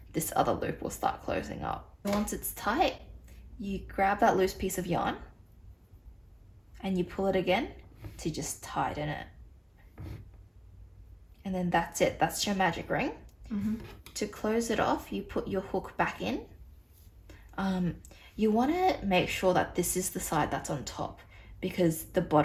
this other loop will start closing up. Once it's tight, you grab that loose piece of yarn and you pull it again to just tighten it. And then that's it. That's your magic ring. To close it off, you put your hook back in. You want to make sure that this is the side that's on top, because the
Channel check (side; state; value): both; identical; correlation 1.00